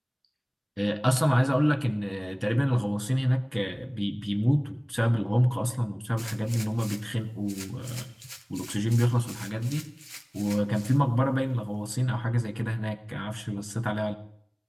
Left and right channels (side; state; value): both; identical; correlation 1.00